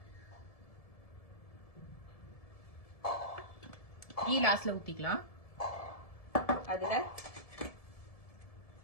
கீ லாஸ்ட்ல ஊத்திக்கலாம். அதுல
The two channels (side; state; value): right; late; 1.7 ms